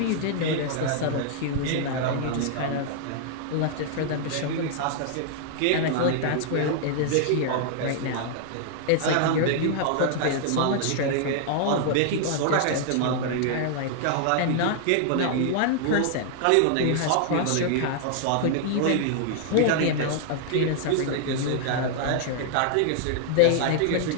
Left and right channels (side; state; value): both; different; correlation -0.01